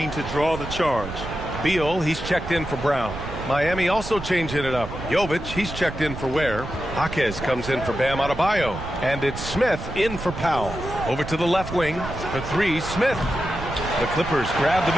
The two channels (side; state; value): right; noise; rumble, 9 dB below the sound